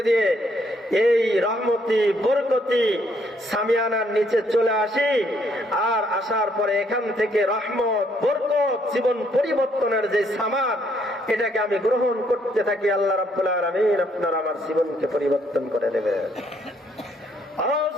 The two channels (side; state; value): both; normal; correlation 0.70